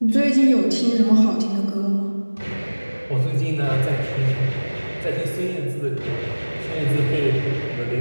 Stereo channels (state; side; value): inverted; both; correlation -1.00